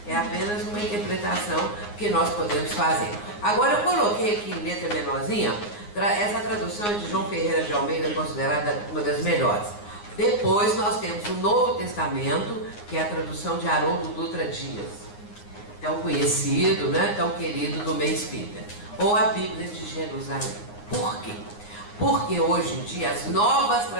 É apenas uma interpretação que nós podemos fazer. Agora eu coloquei aqui em letra menorzinha, essa tradução é de João Ferreira de Almeida, considerada uma das melhores. Depois nós temos o Novo Testamento, que é a tradução de Haroldo Dutra Dias, tão conhecido, tão querido do meio espírita. Ou a Bíblia de Jerusalém. Por quê? Porque hoje em dia as novas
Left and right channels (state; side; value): late; right; 9.6 ms